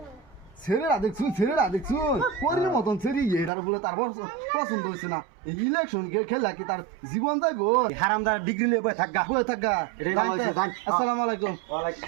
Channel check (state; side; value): drops out; left; at 3.5 s